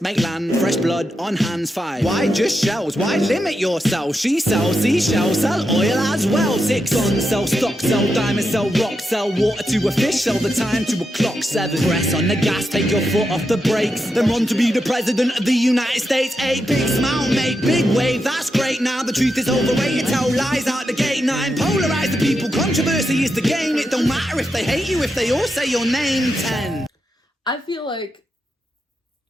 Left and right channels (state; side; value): normal; both; correlation 0.86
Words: make land, fresh blood on hands. 5. Why just shells? Why limit yourself? She sells seashells, sell oil as well. 6. Guns, sell stock, sell diamonds, sell rock, sell water to a fish, sell the time to a clock. 7. Press on the gas, take your foot off the brakes, then run to be the president of the United States. 8. Big smile, make big wave, that's great. Now the truth is overrated, tell lies out the gate. 9. Polarize the people, controversy is the game. It don't matter if they hate you, if they all say your name. 10. I feel like